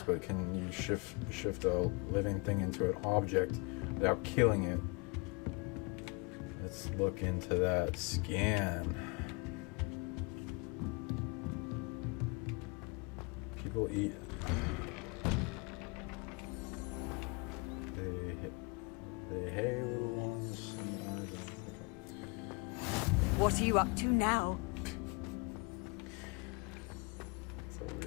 but can you shift a living thing into an object without killing it? Let's look into that scan. People eat. They hay little ones. Okay. What are you up to now? It's a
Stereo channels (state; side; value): quieter; right; 29.5 dB